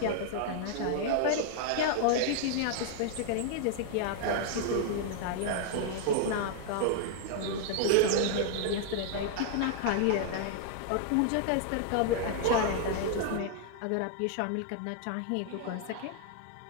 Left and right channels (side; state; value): both; different; correlation 0.00